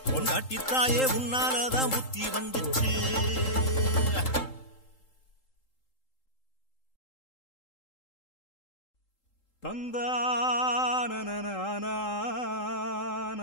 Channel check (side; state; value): right; late; 3.8 ms